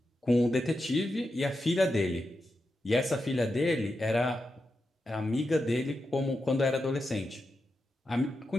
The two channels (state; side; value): normal; both; correlation 0.88